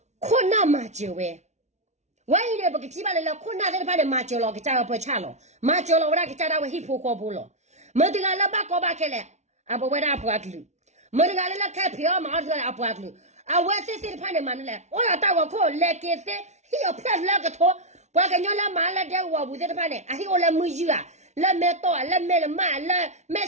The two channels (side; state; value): left; late; 0.33 ms